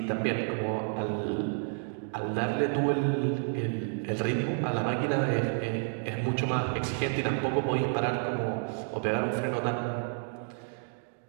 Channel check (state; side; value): silent; left; 58 dB below the other